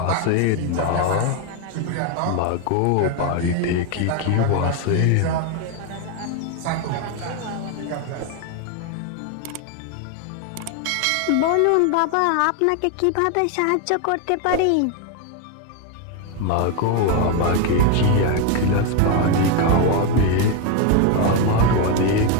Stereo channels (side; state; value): both; different; correlation 0.01